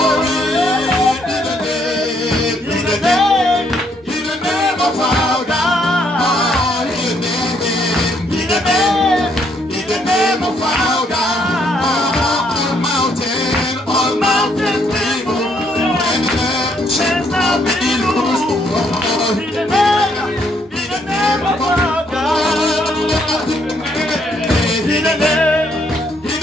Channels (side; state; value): both; normal; correlation 0.71